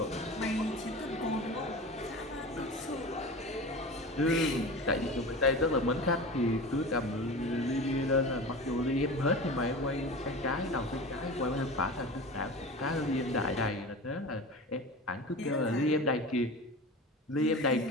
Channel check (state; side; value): normal; both; correlation 0.32